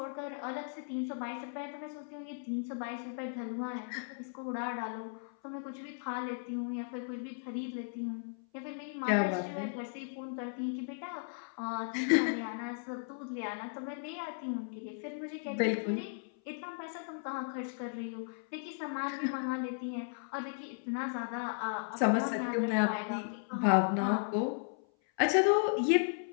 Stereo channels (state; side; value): silent; right; 54 dB below the other